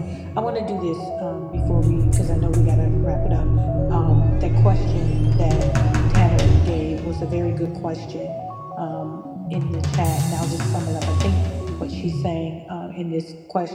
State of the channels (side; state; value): both; identical; correlation 1.00